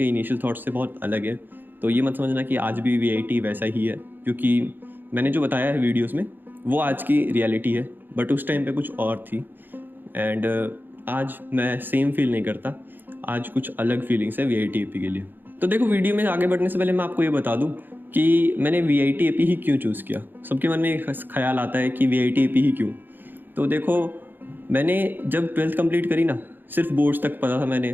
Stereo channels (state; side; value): late; left; 0.093 ms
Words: इनिशियल थॉट्स से बहुत अलग है। तो ये मत समझना कि आज भी वीआईटी वैसा ही है, क्योंकि मैंने जो बताया है वीडियोस में वो आज की रियलिटी है, बट उस टाइम पे कुछ और थी। एंड आज मैं सेम फील नहीं करता, आज कुछ अलग फीलिंग्स है वीआईटी के लिए। तो देखो, वीडियो में आगे बढ़ने से पहले मैं आपको ये बता दूं कि मैंने वीआईटी ही क्यों चूज़ किया। सबके मन में एक ख्याल आता है कि वीआईटी ही क्यों। तो देखो, मैंने जब 12th कंप्लीट करी ना, सिर्फ बोर्ड्स तक पता था, मैंने